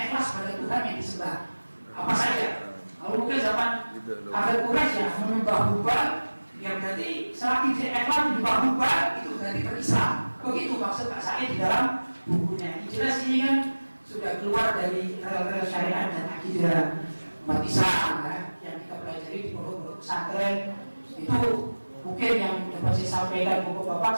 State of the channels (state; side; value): inverted; both; correlation -1.00